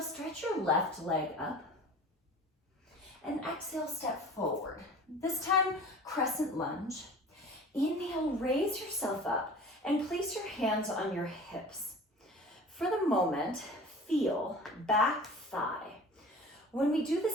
stretch your left leg up. And exhale, step forward. This time, crescent lunge. Inhale, raise yourself up and place your hands on your hips. For the moment, feel back thigh. When we do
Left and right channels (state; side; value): normal; both; correlation 0.41